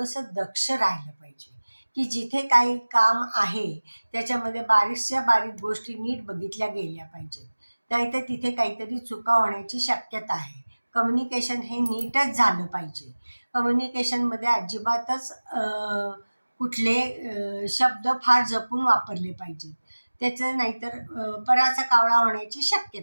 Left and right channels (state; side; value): inverted; both; correlation -1.00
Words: दक्ष राहिलं पाहिजे, की जिथे काही काम आहे त्याच्यामध्ये बारीकच्या बारीक गोष्टी नीट बघितल्या गेल्या पाहिजेत, नाहीतर तिथे काहीतरी चुका होण्याची शक्यता आहे. कम्युनिकेशन हे नीटच झालं पाहिजे. कम्युनिकेशनमध्ये अजिबातच कुठले शब्द फार जपून वापरले पाहिजेत. त्याचं नाहीतर पराचा कावळा होण्याची